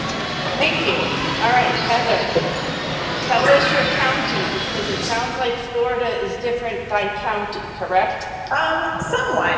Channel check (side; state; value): both; identical; correlation 1.00